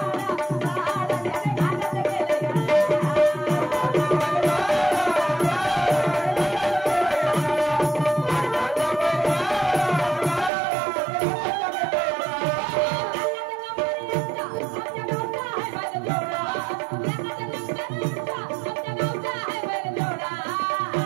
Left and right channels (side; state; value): left; drops out; at 10.5 s